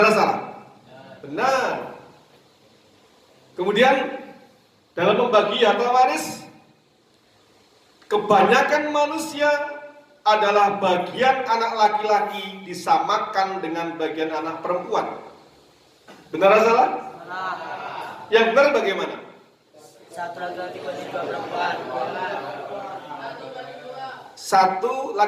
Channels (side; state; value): both; identical; correlation 1.00